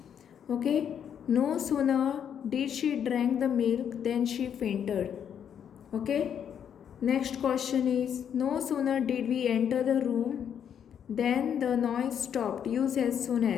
Okay. No sooner did she drank the milk than she fainted. Okay. Next question is no sooner did we enter the room than the noise stopped. Use as soon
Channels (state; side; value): quieter; right; 8.5 dB